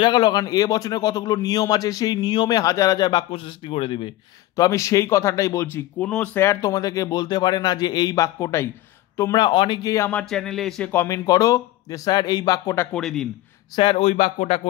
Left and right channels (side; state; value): right; quieter; 15.9 dB